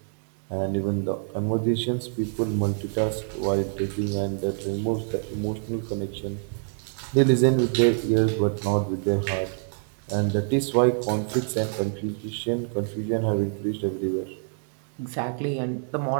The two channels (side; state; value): left; silent; 61 dB below the other